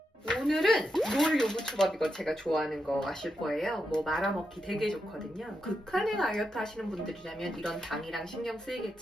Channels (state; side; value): normal; both; correlation 0.85